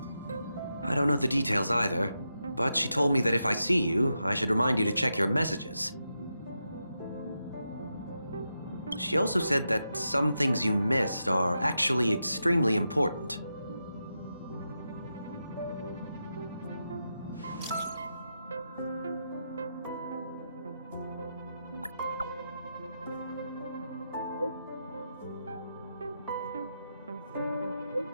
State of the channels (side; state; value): both; inverted; correlation -0.87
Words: I don't know the details either, but she told me that if I see you, I should remind you to check your messages. She also said that some things you missed are actually extremely important.